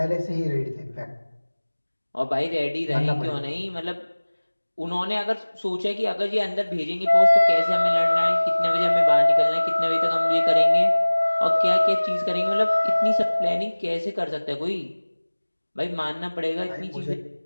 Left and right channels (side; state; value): both; inverted; correlation -1.00